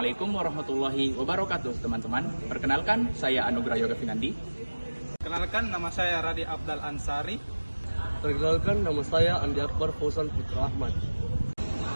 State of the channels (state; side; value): inverted; both; correlation -1.00